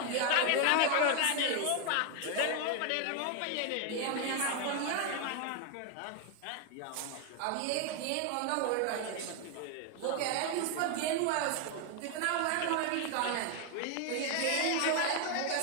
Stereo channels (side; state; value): both; different; correlation 0.01